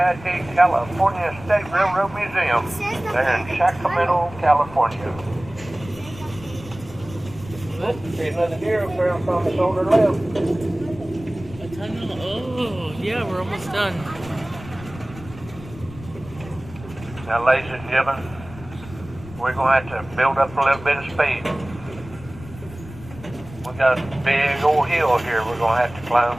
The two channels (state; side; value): noise; left; rumble, 16 dB below the sound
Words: the California State Railroad Museum. They're in Sacramento, California. See another deer up there from the shoulder left. A tunnel. Oh, yeah, we're almost done. Now, ladies and gentlemen, we're going to have to build up a little bit of speed. We got a big old hill here we're going to have to climb.